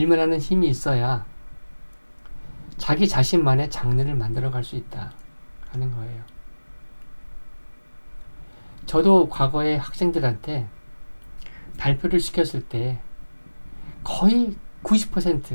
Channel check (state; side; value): inverted; both; correlation -1.00